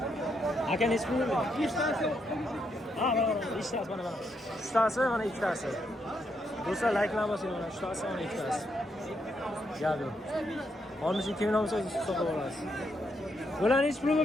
Aka nechi pul bo'ldi? 5 tasi. Ha, 5 tasi mana. 3 tasi mana 2 tasi. Do'stlar, like qilamiz mana 3 tasi mana 2 tasi. Gap yo'q. 62 million bo'lsa hisoblab olasiz. Bular nechi pul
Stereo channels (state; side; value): normal; both; correlation 0.78